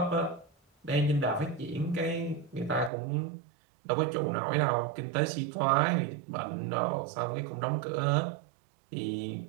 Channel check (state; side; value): drops out; left; at 2.9 s